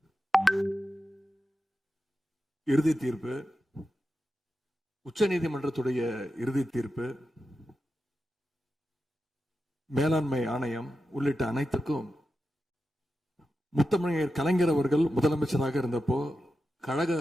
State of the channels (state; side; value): normal; both; correlation 0.90